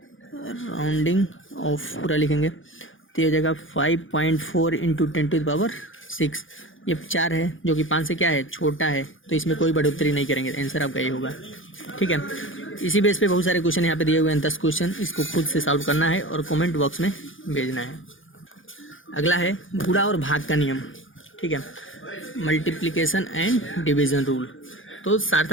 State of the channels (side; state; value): right; late; 0.58 ms